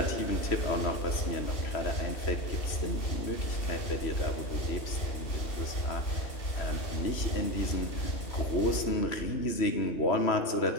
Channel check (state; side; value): late; right; 3.0 ms